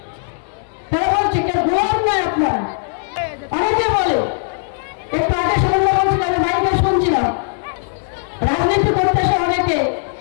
তারা বলছে কেউ গোয়ার নয় আপনারা। অনেকে বলে, একটু আগে শুনলে বলছিল, আমি মাইকে শুনছিলাম, রাজনীতি করতে এসে অনেকে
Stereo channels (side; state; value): right; silent; digital silence